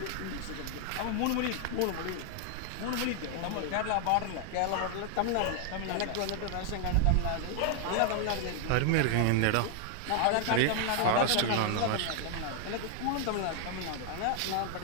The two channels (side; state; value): both; different; correlation 0.00